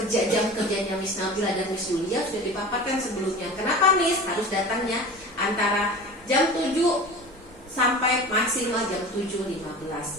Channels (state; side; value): normal; both; correlation 0.35